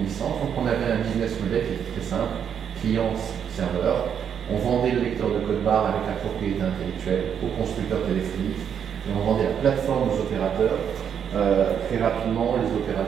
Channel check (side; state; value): left; quieter; 8.1 dB